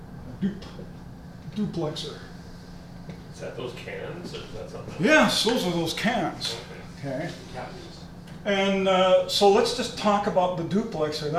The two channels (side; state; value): both; identical; correlation 1.00